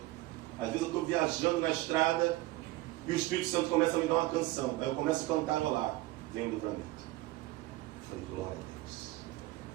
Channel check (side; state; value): left; quieter; 18.7 dB